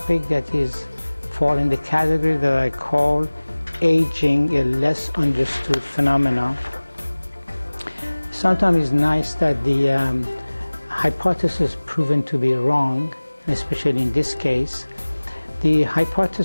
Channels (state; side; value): inverted; both; correlation -1.00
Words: that is fall in the category that I call aging, a less understood phenomenon. Sometimes it's nice that the hypothesis proven to be wrong, especially in this case. The